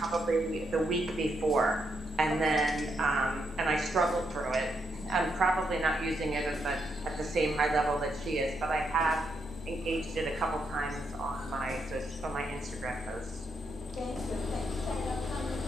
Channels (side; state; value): both; normal; correlation 0.79